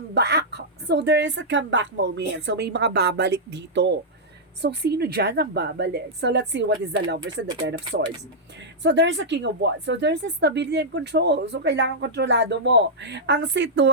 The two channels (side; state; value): both; normal; correlation -0.09